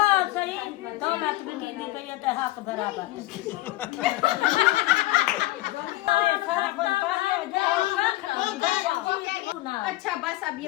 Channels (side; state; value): right; quieter; 18.1 dB